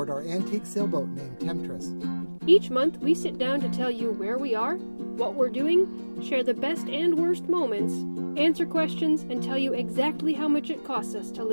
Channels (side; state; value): both; inverted; correlation -1.00